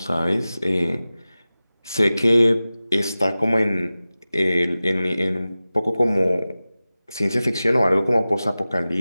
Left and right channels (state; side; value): inverted; both; correlation -0.96